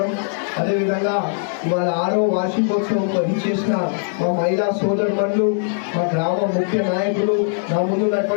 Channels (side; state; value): right; silent; digital silence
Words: అదేవిధంగా వాళ్ళ 6వ వార్షికోత్సవం ఇచ్చేసిన మా మహిళా సోదరులు, మా గ్రామ ముఖ్య నాయకులు, నా